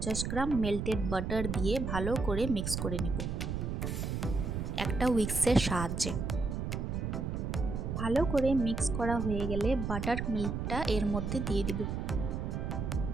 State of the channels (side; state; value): right; noise; rumble, 2 dB below the sound